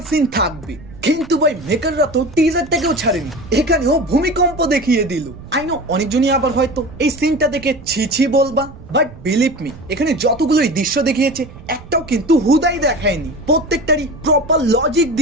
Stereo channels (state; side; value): noise; right; rumble, 18 dB below the sound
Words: সিন থাকবে। কিন্তু ভাই মেকাররা তো টিজারটাকেও ছাড়েনি, এখানেও ভূমিকম্প দেখিয়ে দিল। আই নো অনেকজনই আবার হয়তো এই সিনটা দেখে ছি ছি বলবা, বাট বিলিভ মি এখানে যতগুলোই দৃশ্য দেখিয়েছে একটাও কিন্তু হুদাই দেখায়নি, প্রত্যেকটারই প্রপার লজিক